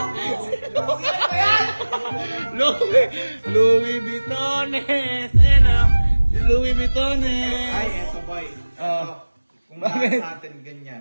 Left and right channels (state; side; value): inverted; both; correlation -1.00